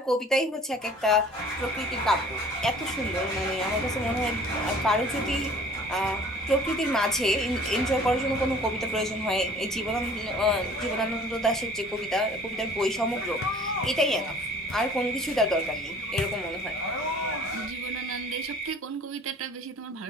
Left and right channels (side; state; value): both; normal; correlation 0.50